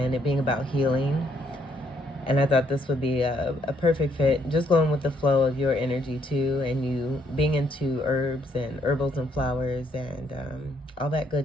it being about healing. And I thought this would be a perfect fit, just going with the flow of your energy too, and you being into herbs and herbals and flowers and all that good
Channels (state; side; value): normal; both; correlation 0.71